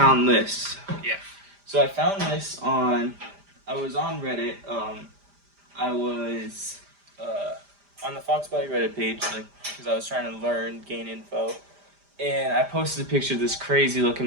this. Yeah. So I found this I was on Reddit. I was on the Fox Body Reddit page, like, because I was trying to gain info. And I posted a picture of this crazy looking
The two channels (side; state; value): left; late; 5.0 ms